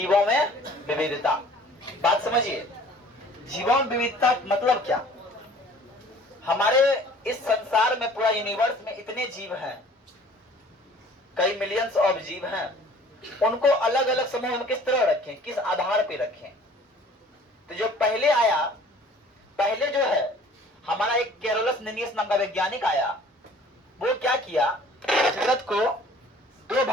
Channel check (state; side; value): normal; both; correlation 0.51